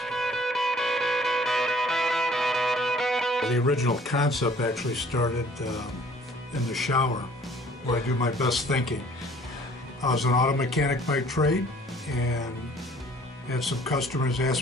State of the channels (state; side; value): normal; both; correlation 0.55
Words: The original concept actually started in the shower, where I do my best thinking. I was an auto mechanic by trade, and had some customers